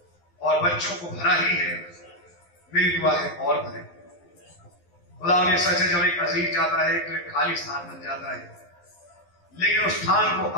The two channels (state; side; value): late; right; 11 ms